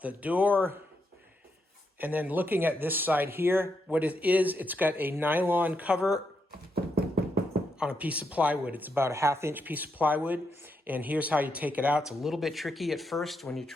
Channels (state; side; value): normal; both; correlation 0.81